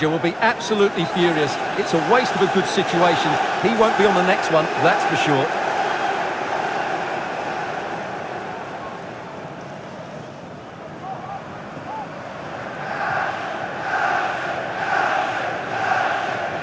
will be absolutely furious. It's a waste of a good situation. He won't be on the next one, that's for sure.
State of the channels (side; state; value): both; identical; correlation 1.00